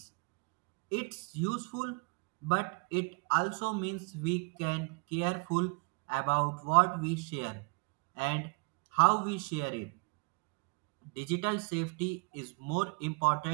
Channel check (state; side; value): quieter; left; 31.8 dB